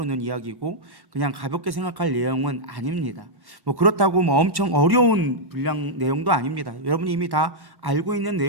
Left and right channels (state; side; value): late; left; 1.1 ms